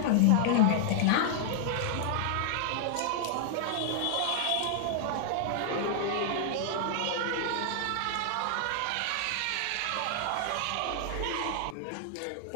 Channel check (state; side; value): different; both; correlation 0.00